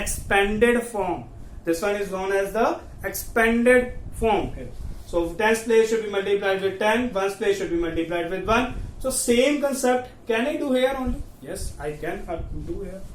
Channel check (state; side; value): identical; both; correlation 1.00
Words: form. This one is known as the expanded form. Okay. So 10's place should be multiplied with 10, 1's place should be multiplied with 1. So same concept, can I do here only? Yes, I can do here.